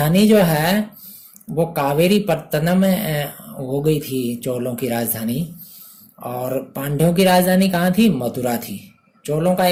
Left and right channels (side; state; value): both; identical; correlation 1.00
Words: जो है वो कावेरी पत्तनम हो गई थी, चोलों की राजधानी। और पांड्यों की राजधानी कहाँ थी? मथुरा थी। चोलों का